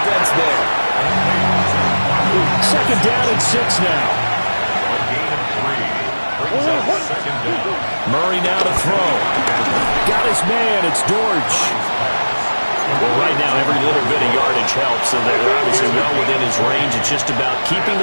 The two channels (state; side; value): inverted; both; correlation -1.00